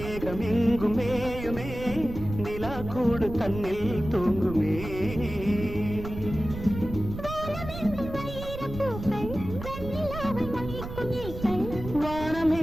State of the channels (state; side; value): noise; right; rumble, 9 dB below the sound